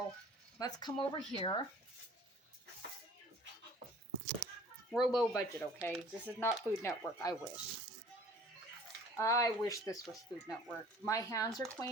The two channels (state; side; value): normal; both; correlation 0.49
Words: let's come over here. We're low budget, okay? This is not Food Network, I wish. I wish this was Food Network. My hands are